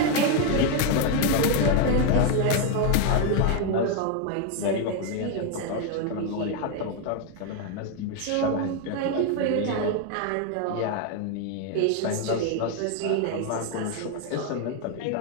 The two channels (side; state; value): both; different; correlation 0.01